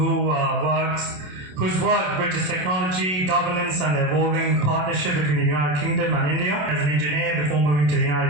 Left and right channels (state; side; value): late; left; 27 ms